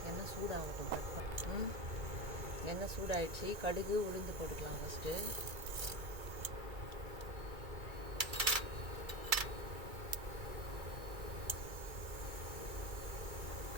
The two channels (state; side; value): late; left; 2.3 ms